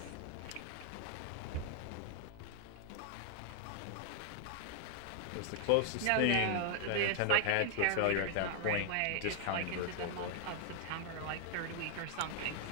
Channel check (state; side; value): different; both; correlation 0.00